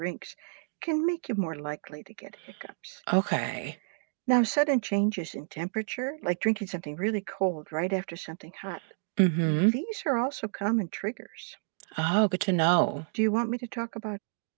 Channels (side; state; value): left; silent; digital silence